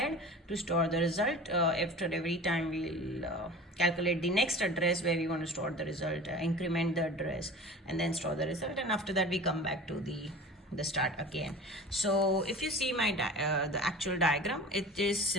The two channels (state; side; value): normal; both; correlation 0.38